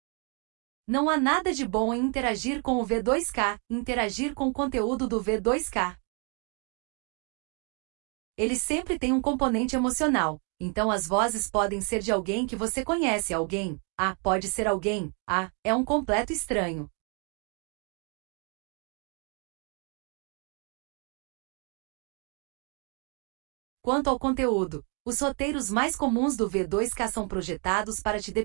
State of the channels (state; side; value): quieter; left; 36.9 dB